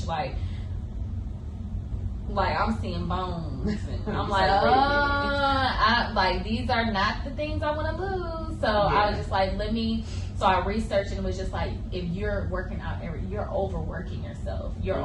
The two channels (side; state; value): both; identical; correlation 1.00